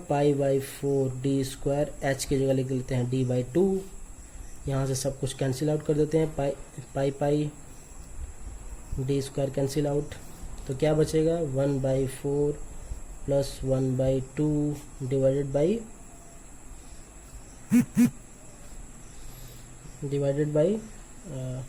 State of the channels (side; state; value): both; identical; correlation 1.00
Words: बाई 4 डी स्क्वायर, एच की जगह लिख लेते हैं d बाई 2। यहाँ से सब कुछ कैंसिल आउट कर देते हैं, पाई पाई डी स्क्वायर कैंसिल आउट, तो क्या बचेगा 1 by 4 plus 1 by 2 divided by